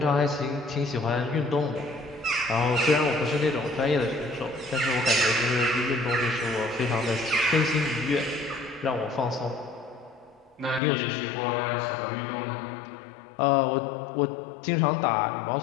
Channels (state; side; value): drops out; right; at 10.8 s